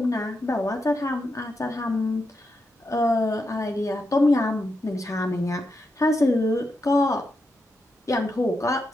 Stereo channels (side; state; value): both; normal; correlation 0.85